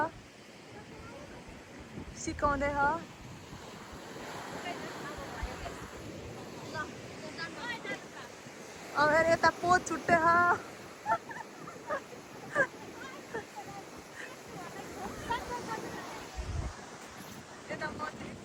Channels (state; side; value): identical; both; correlation 1.00